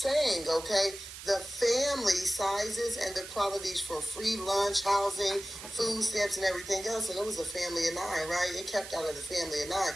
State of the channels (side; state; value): right; noise; hiss, 12 dB below the sound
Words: okay, the family sizes and the qualities for free lunch, housing, food stamps, and everything else. And it was a family of 9, right? It kept out of the family of